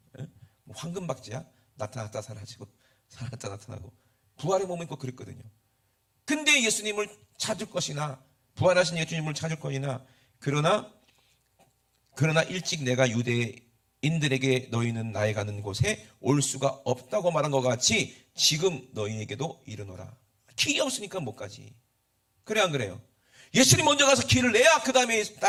뭐 황금박쥐야? 나타났다 사라지고 사라졌다 나타나고. 부활의 몸은 꼭 그랬거든요. 근데 예수님을 찾을 것이나 부활하신 예수님을 찾을 것이나 그러나 일찍 내가 유대인들에게 너희는 나의 가는 곳에 올 수가 없다고 말한 것 같이 지금 너희에게도 이르노라. 길이 없으니까 못 가지. 그래 안 그래요? 예수님 먼저 가서 길을 내야 그 다음에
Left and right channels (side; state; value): both; identical; correlation 1.00